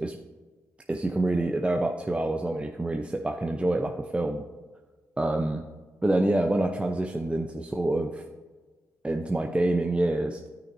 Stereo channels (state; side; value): normal; both; correlation 0.94